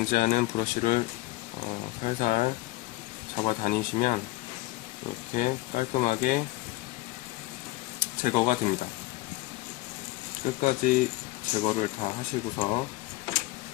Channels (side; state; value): right; quieter; 19.8 dB